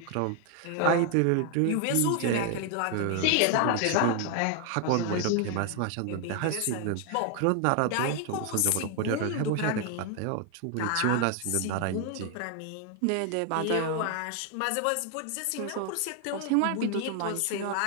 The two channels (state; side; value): different; both; correlation 0.00